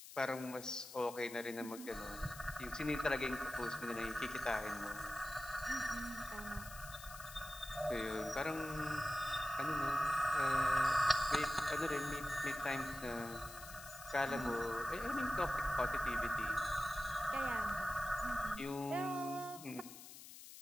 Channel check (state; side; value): noise; left; hiss, 14 dB below the sound